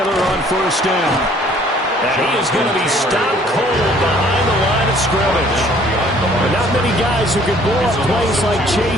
on 1st down. And he is going to be stopped cold behind the line of scrimmage. But not many guys who can blow up plays like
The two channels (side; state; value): both; normal; correlation 0.58